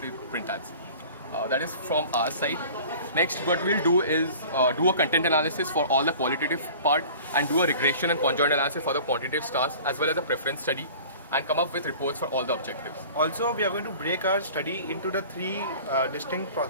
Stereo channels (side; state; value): both; inverted; correlation -0.44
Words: the print ads. That is from our side. Next, what we'll do is do a content analysis for all the qualitative part and do a regression and conjoint analysis for the quantitative stars as well as a preference study and come up with reports for all the objectives. Also, we are going to break our study into the three distinct